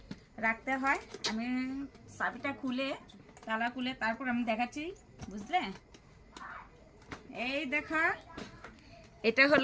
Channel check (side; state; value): both; identical; correlation 1.00